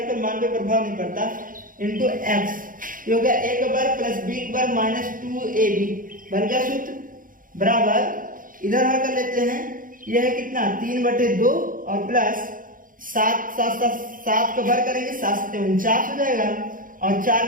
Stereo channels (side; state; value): left; late; 0.40 ms